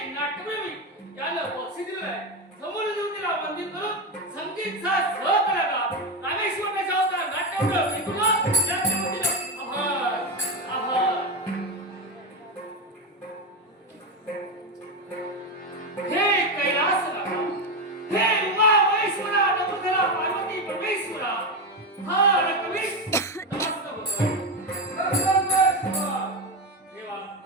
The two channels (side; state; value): both; normal; correlation 0.13